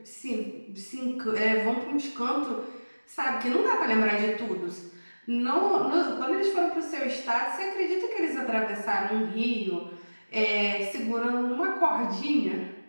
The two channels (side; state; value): both; inverted; correlation -1.00